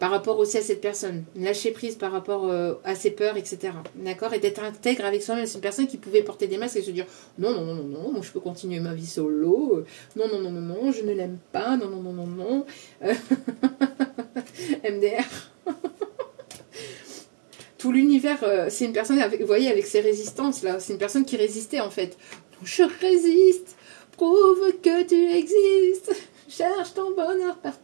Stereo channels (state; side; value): silent; left; digital silence